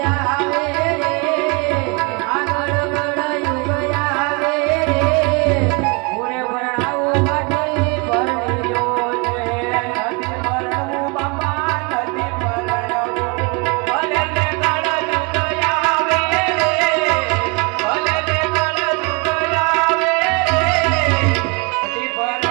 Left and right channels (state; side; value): quieter; left; 30.8 dB